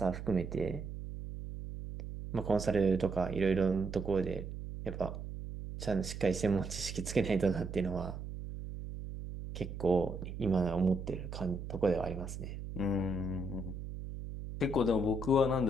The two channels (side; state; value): right; noise; hum, 8 dB below the sound